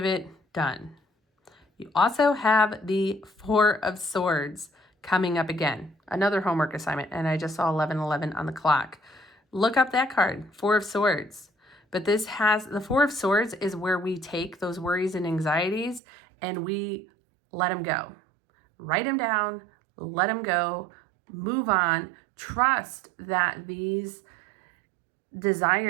it. Done. You also have the Four of Swords coming up again. Another homework assignment. And I just saw 11:11 on the clock. Look up that card, Four of Swords. But this has, the Four of Swords is where we take those worries and anxieties and we let them go. Write them down, let them go, move on. Trust that these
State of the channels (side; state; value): left; drops out; at 16.0 s